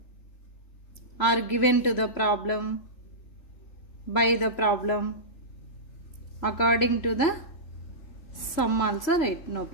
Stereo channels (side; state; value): right; late; 3.0 ms